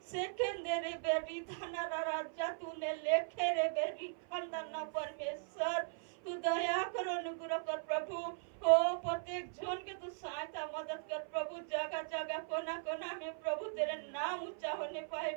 सेकेंदरे बेरी धना राजा, तूने लेखे रे बेरी खंदना परमेश्वर, तू दया कर अनुग्रह कर प्रभु। ओ प्रत्येक जन के तू सहायता मदद कर प्रभु, जगह जगह कोना कोना में प्रभु तेरे नाम ऊंचा होने पाए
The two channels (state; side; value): silent; left; 52 dB below the other